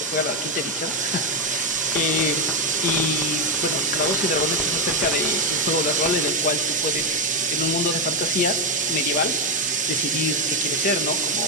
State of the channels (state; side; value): normal; both; correlation 0.07